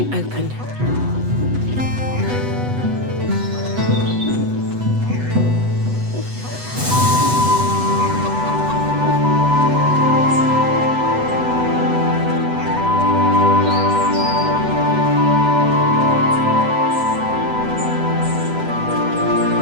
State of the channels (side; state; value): left; late; 8.0 ms